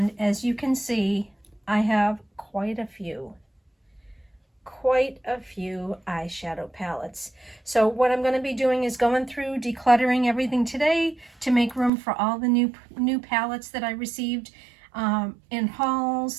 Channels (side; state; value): left; drops out; at 11.9 s